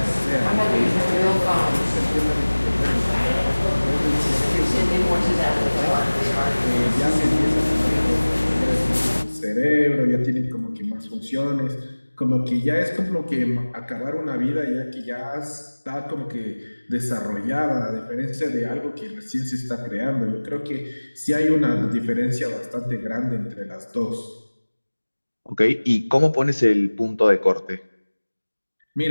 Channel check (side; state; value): both; inverted; correlation -1.00